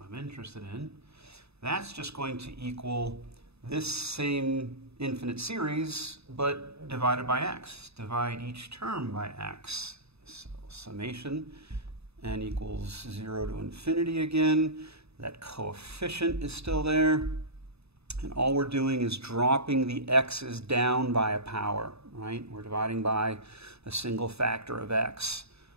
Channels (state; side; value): late; left; 0.79 ms